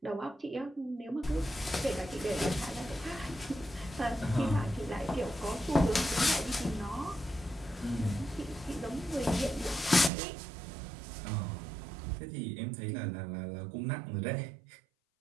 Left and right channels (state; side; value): drops out; left; at 10.1 s